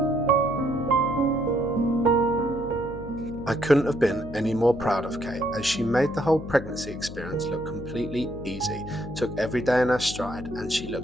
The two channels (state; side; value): noise; left; hum, 11 dB below the sound